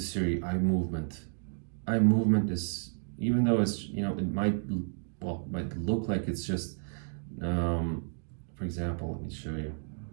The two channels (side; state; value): left; silent; digital silence